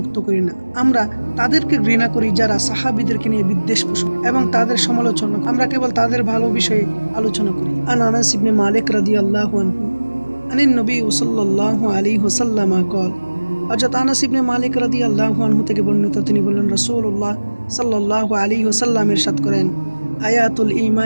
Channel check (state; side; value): inverted; both; correlation -1.00